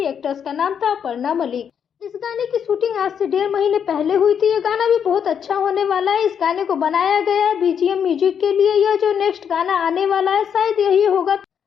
एक्ट्रेस का नाम था अपर्णा मलिक। इस गाने की शूटिंग आज से 1.5 महीने पहले हुई थी। ये गाना भी बहुत अच्छा होने वाला है, इस गाने को बनाया गया है BGM म्यूजिक के लिए। यह जो नेक्स्ट गाना आने वाला है शायद यही होगा।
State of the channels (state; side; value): quieter; right; 7.9 dB